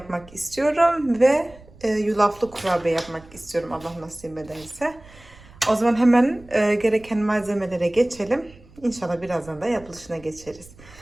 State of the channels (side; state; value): right; noise; rumble, 23 dB below the sound